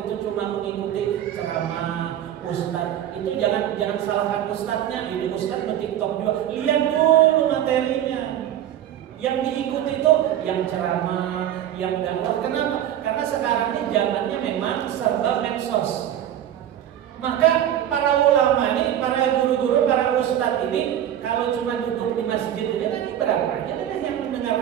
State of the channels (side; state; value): left; quieter; 11.0 dB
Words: itu cuma mengikuti ceramah ustadz, itu jangan salahkan ustadznya. Ini ustadz bertiktok juga. Lihat dulu materinya. Yang diikuti itu yang ceramah, yang dakwah. Kenapa? Karena sekarang ini zamannya memang serba medsos. Maka para ulama ini, para guru-guru, para ustadz ini kalau cuma duduk di masjid ini tadi berapa aja yang